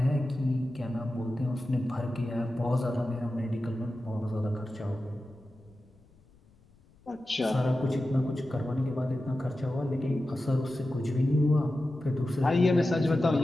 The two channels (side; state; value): left; noise; rumble, 30 dB below the sound